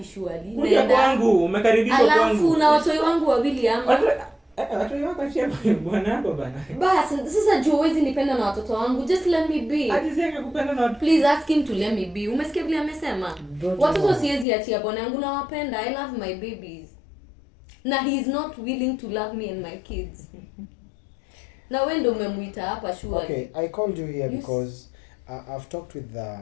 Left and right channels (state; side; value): drops out; right; at 14.5 s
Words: surely? Kuja kwangu, umekaribishwa kwangu. Alafu na watoi wangu wawili ama. Watu wako achia bwana wako bana. Basi sasa juu huwezi nipenda na watoto wangu. Just let me be. Alizeka kupenda na watu. Please ask him to let me be. Umesikia vile amesema? Watoto siwezi achia bwana yangu, na wapenda. I love my babies. Na he is not willing to love me and my kids. Na wewe ndio umemuita hapa surely. Okay, I called you here because I've talked with